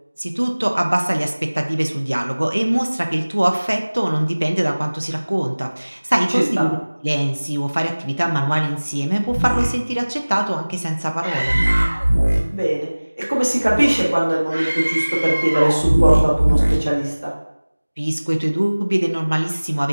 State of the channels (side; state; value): both; inverted; correlation -1.00